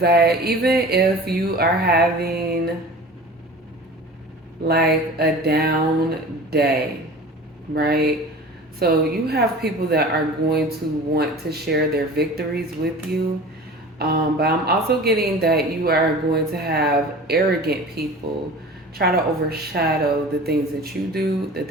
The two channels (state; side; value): normal; both; correlation 0.39